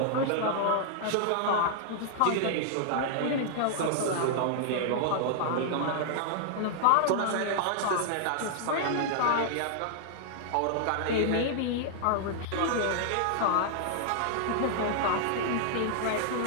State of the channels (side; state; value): both; different; correlation -0.01